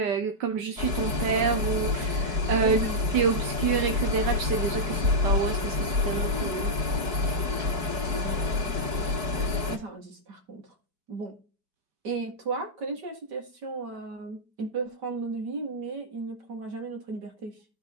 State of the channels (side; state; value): left; late; 4.7 ms